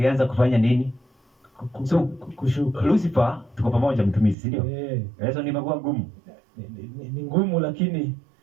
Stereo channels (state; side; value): drops out; left; at 4.4 s